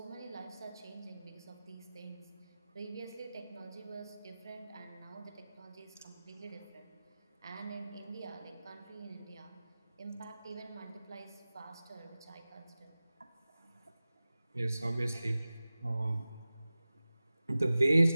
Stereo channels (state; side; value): inverted; both; correlation -0.96